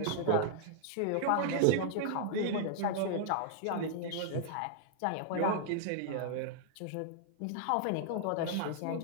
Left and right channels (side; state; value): both; different; correlation -0.01